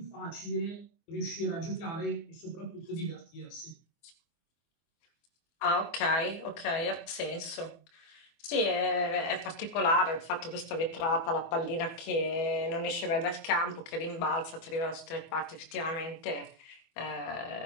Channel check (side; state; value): right; late; 24 ms